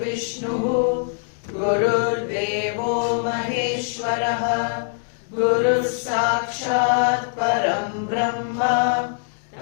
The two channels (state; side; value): silent; right; digital silence